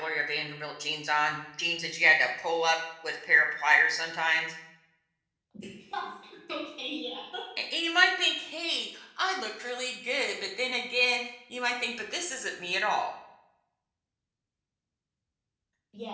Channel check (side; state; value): both; identical; correlation 1.00